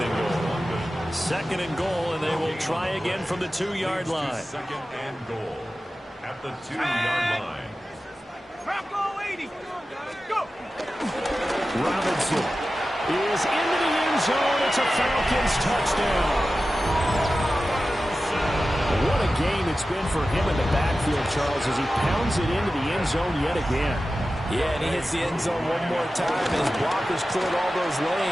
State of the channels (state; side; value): normal; both; correlation 0.94